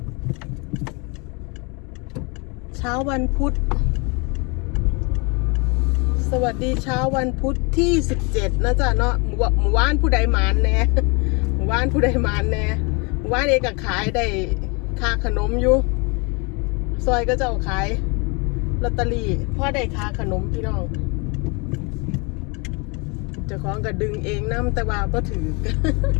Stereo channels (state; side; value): quieter; right; 30.7 dB